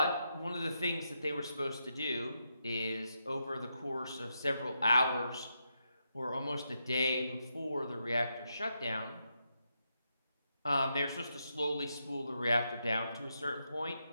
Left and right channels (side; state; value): both; inverted; correlation -0.83